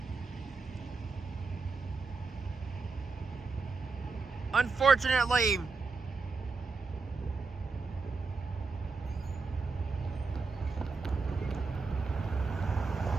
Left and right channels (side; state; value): left; quieter; 4.3 dB